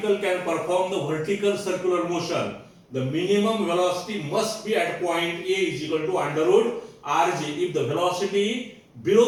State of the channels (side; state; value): both; identical; correlation 1.00